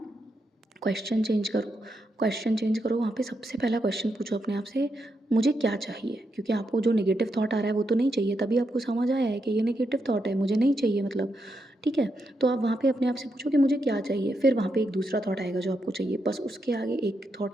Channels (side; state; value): both; normal; correlation 0.83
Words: क्वेश्चन चेंज करो। क्वेश्चन चेंज करो, वहाँ पे सबसे पहला क्वेश्चन पूछो अपने आप से, मुझे क्या चाहिए, क्योंकि आपको जो नेगेटिव थॉट आ रहा है वो तो नहीं चाहिए, तभी आपको समझ आया है कि ये नेगेटिव थॉट है, मुझे नहीं चाहिए मतलब, ठीक है। तो आप वहाँ पे अपने आप से पूछो कि मुझे क्या चाहिए, फिर वहाँ पे एक दूसरा थॉट आएगा जो आपको चाहिए, बस उसके आगे एक